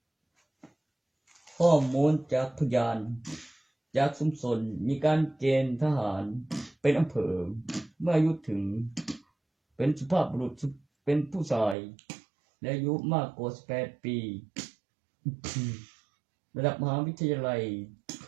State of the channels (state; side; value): drops out; left; at 11.8 s